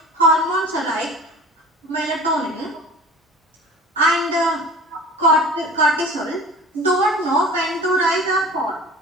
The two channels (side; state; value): both; normal; correlation 0.40